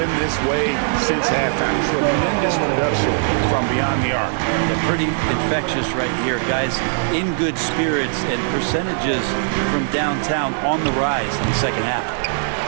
this way since halftime. Tremendous production from beyond the arc. They're pretty infectious right here, guys. In good spirits and percentages from downtown on the rise in the 2nd half.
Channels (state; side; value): silent; left; digital silence